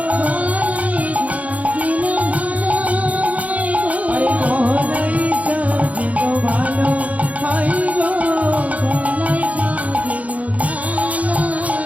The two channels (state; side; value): late; left; 0.069 ms